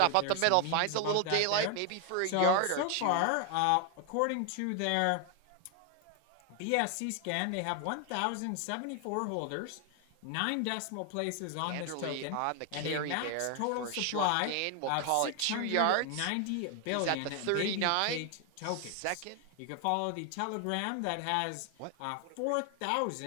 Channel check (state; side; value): different; both; correlation 0.01